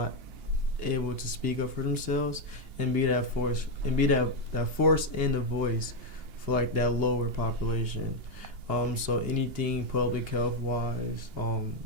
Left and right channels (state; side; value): late; left; 2.8 ms